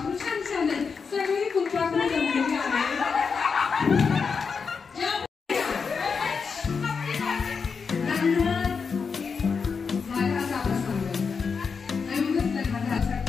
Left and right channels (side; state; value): right; quieter; 5.5 dB